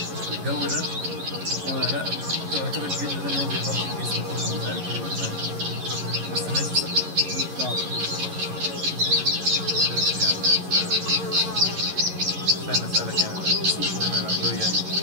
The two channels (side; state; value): left; late; 11 ms